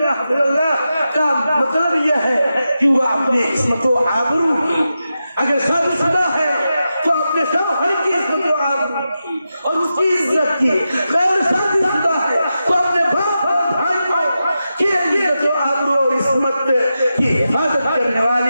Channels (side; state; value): both; inverted; correlation -0.90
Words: حفظ اللہ کا مطلب یہ ہے کہ وہ اپنے عصمت و آبرو کی, اگر شادی شدہ ہے تو اپنے شوہر کی عصمت و آبرو کی اور اس کی عزت کی, غیر شادی شدہ ہے تو اپنے باپ اور بھائیوں کی عزت و آبرو اور عصمت کی حفاظت کرنے